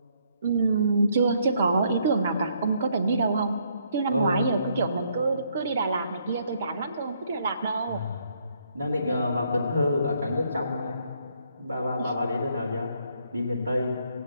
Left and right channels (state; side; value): inverted; both; correlation -0.70